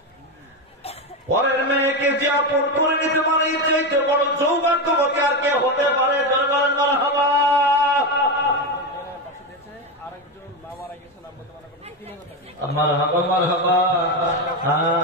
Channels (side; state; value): both; normal; correlation 0.13